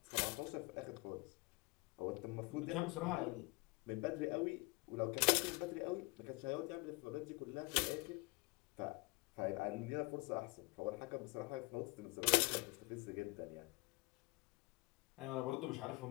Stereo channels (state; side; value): quieter; right; 25.5 dB